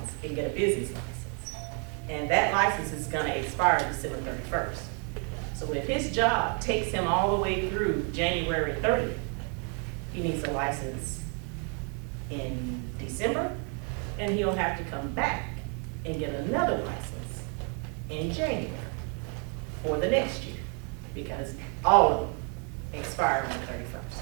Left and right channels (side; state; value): left; quieter; 39.2 dB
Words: and get a business license. And that license is going to expire December 31st. So if his job takes him all the way through January 30th, he needs a license in December and he'll have to come back and get another license in January for the next year, because all of them expire on the 31st.